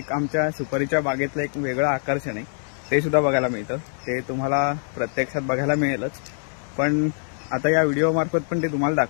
आमच्या सुपारीच्या बागेतलं एक वेगळं आकर्षण आहे, ते सुद्धा बघायला मिळतं। ते तुम्हाला प्रत्यक्षात बघायला मिळेलच, पण आता या व्हिडिओ मार्फत पण ते तुम्हाला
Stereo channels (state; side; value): silent; right; 63 dB below the other